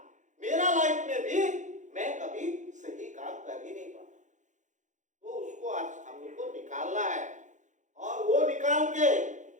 मेरा लाइफ में भी मैं कभी सही काम कर ही नहीं पाता। तो उसको आज हम लोग को निकालना है, और वो निकाल के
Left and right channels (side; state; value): left; late; 0.35 ms